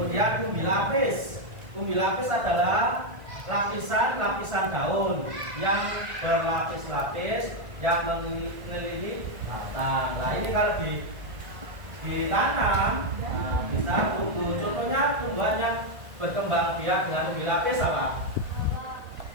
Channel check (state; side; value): late; left; 1.5 ms